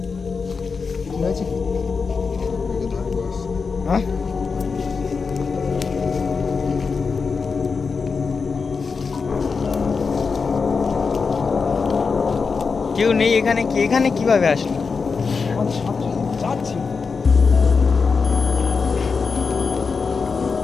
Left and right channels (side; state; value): right; quieter; 5.0 dB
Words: কি হয়েছে? হ্যাঁ কেউ নেই এখানে। কি এখানে কিভাবে আসলো? আমাদের সাথে সাথে যাচ্ছিল।